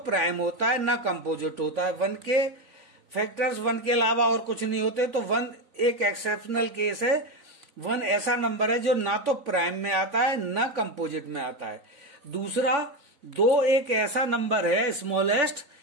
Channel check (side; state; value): left; late; 3.9 ms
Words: होता है ना कंपोजिट होता है। वन के फैक्टर्स वन के अलावा और कुछ नहीं होते। तो वन एक एक्सेप्शनल केस है। वन ऐसा नंबर है जो ना तो प्राइम में आता है ना कंपोजिट में आता है। दूसरा, दो एक ऐसा नंबर है स्मॉलेस्ट